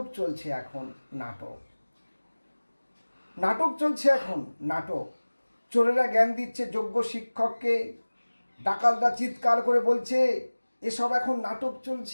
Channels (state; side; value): inverted; both; correlation -1.00